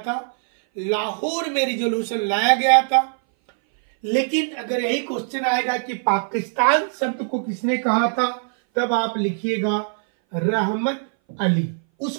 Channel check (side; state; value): left; silent; 60 dB below the other